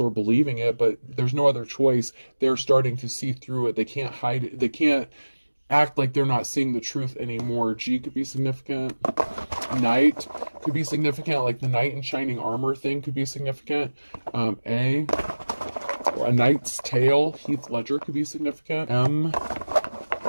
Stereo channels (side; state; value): both; inverted; correlation -1.00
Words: or believing it, but there's no other choice. They're starting to see through it. They can't hide it. They can't act like they're not seeing the truth anymore. G could be significant. Knight could be significant, like the knight in shining armor thing could be significant. A knight's tale, Heath Ledger, could be significant. M,